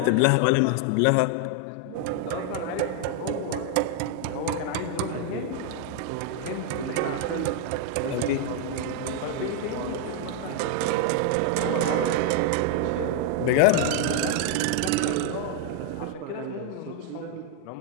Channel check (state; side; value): different; both; correlation 0.00